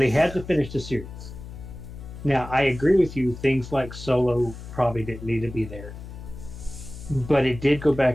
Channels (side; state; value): left; noise; hum, 13 dB below the sound